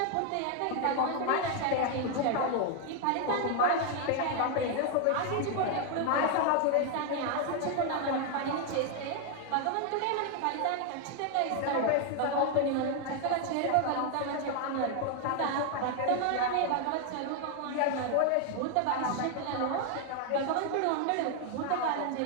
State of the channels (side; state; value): both; different; correlation 0.00